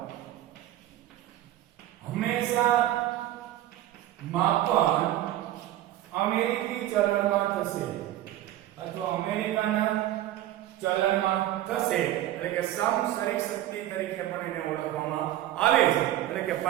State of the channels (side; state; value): left; quieter; 13.7 dB